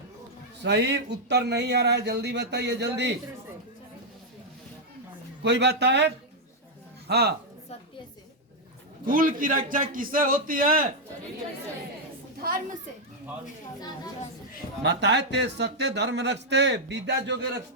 सही उत्तर नहीं आ रहा है, जल्दी बताइए, जल्दी। कोई बताए? हाँ, सत्य से कुल की रक्षा किससे होती है? धर्म से माताए ते सत्य धर्म रखते, विद्या जोगे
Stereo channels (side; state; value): both; normal; correlation -0.02